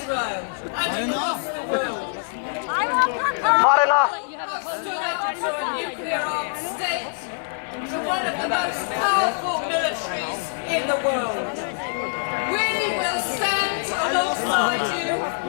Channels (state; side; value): silent; right; digital silence